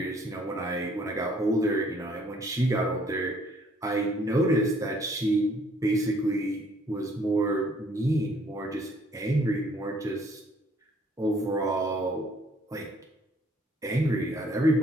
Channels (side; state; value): both; normal; correlation 0.62